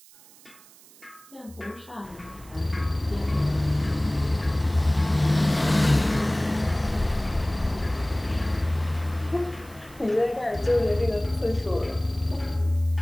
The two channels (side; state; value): right; noise; hiss, 24 dB below the sound